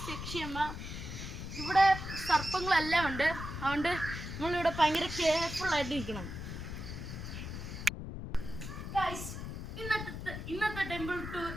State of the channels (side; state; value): left; noise; rumble, 7 dB below the sound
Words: യക്ഷിയമ്മ. ഇവിടെ സർപ്പങ്ങളെല്ലാം ഉണ്ട്, അതുകൊണ്ട് നമ്മളിവിടെ ഭയങ്കര കെയർഫുൾ ആയിട്ട് ഇരിക്കണം. ഇന്നത്തെ ടെമ്പിൾ ടൂർ